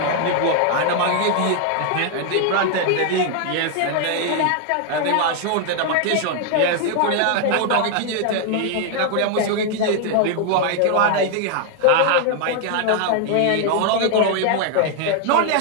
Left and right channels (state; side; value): different; both; correlation 0.00